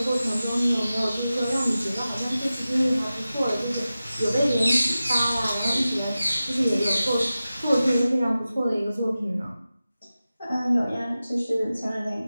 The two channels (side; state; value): both; inverted; correlation -0.94